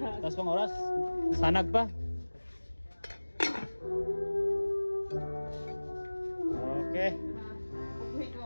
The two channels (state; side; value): inverted; both; correlation -1.00